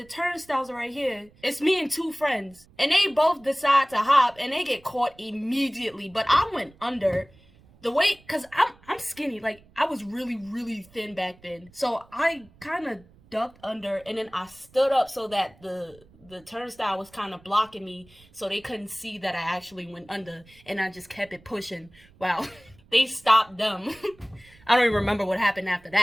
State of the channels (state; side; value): noise; right; rumble, 27 dB below the sound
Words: turnstiles are right here. It's me and two friends. And they both decide to hop, and they get caught immediately. But I went under. The way, cause I'm skinny, like I was really, really thin back then. So I kind of ducked under, and then I stood up so that the turnstile was kind of blocking me, so they couldn't see that I actually went under, and I just kept it pushing. Wow. They stopped them. I don't even remember what happened after